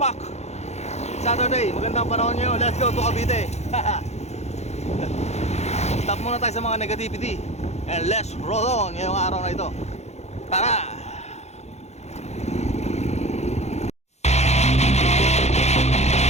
Saturday, magandang panahon nyo. Let's go to Cavite. Stop muna tayo sa mga negativity and let's roll on ngayong araw na ito. Tara!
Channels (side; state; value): right; late; 0.32 ms